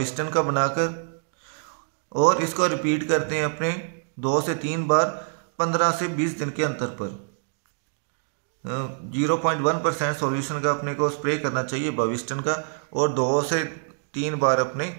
का बनाकर, और इसको रिपीट करते हैं अपने 2 से 3 बार 15 से 20 दिन के अंतर पर। 0.1% सॉल्यूशन का अपने को स्प्रे करना चाहिए बविस्टन का, और 2 से 3 बार अपने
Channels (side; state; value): left; silent; digital silence